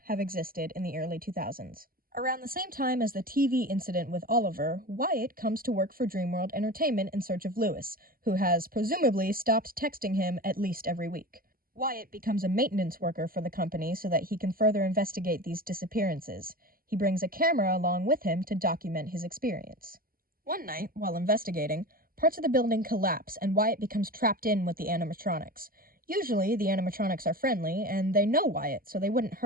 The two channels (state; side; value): late; left; 0.42 ms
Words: have existed in the early 2000s. Around the same time as the TV incident with Oliver, Wyatt comes to work for Dreamworld Entertainment in search of Lewis, who has presumably stopped texting him at least every week. Wyatt becomes a maintenance worker for the company so that he can further investigate these disappearances. He brings a camera along with him to document his experience. One night, while investigating, parts of the building collapse and Wyatt becomes trapped in with the animatronics. Usually, the animatronics are friendly, and they know Wyatt, so they wouldn't